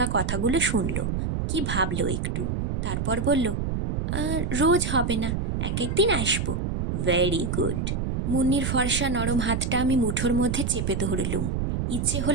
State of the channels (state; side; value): noise; right; rumble, 1 dB below the sound